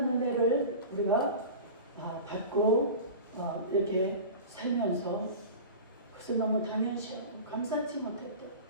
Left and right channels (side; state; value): both; inverted; correlation -0.33